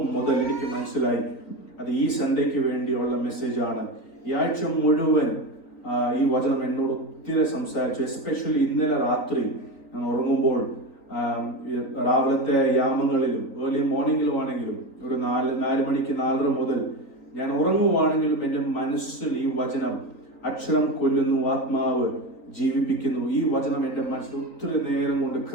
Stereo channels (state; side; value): late; right; 3.9 ms